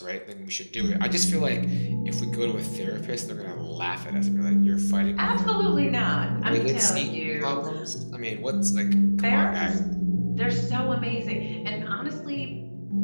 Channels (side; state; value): both; inverted; correlation -1.00